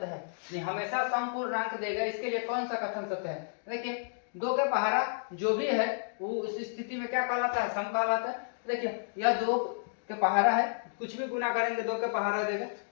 है। नहीं, हमेशा समपूर्णांक देगा, इसके लिए कौन सा कथन सत्य है। देखिए दो के पहाड़ा जो भी है वो इस स्थिति में क्या कहलाता है, सम कहलाता है। देखिए यह दो के पहाड़ा है, कुछ भी गुना करेंगे दो के पहाड़ा देगा,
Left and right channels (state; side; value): silent; right; digital silence